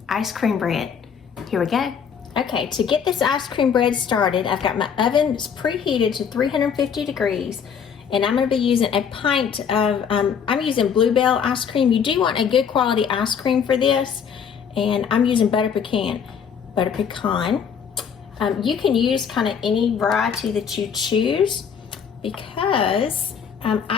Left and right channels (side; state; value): right; quieter; 7.2 dB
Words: ice cream bread. Here we go. Okay, to get this ice cream bread started, I've got my oven preheated to 350 degrees, and I'm going to be using a pint of, I'm using Bluebell ice cream. You do want a good quality ice cream for this, and I'm using butter pecan. You can use kind of any variety that you choose, because